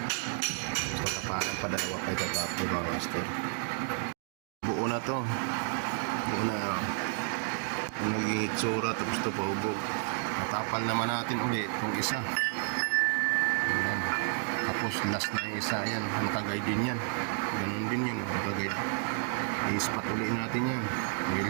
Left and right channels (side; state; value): left; silent; 57 dB below the other